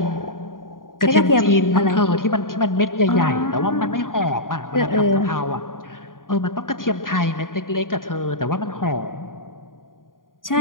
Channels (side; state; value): right; late; 0.90 ms